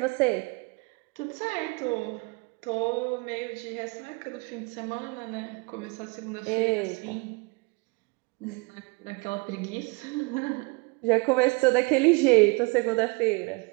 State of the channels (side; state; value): left; quieter; 29.1 dB